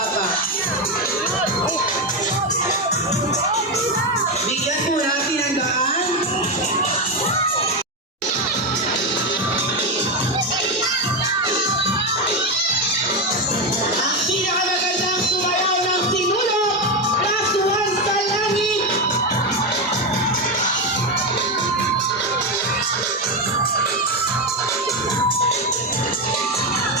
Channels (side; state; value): both; normal; correlation 0.10